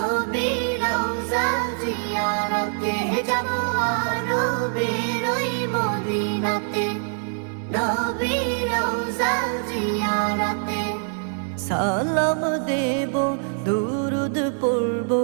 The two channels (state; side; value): silent; left; 63 dB below the other